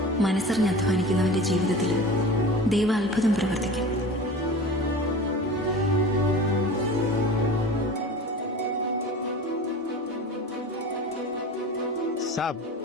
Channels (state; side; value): normal; both; correlation 0.35